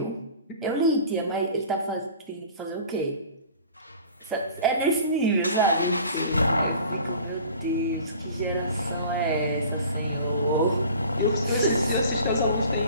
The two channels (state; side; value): inverted; both; correlation -0.44